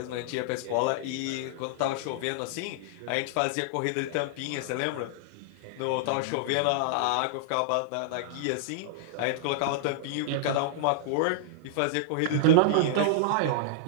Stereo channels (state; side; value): different; both; correlation -0.01